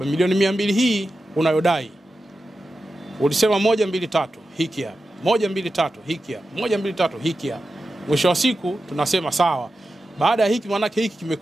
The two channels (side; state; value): both; normal; correlation 0.92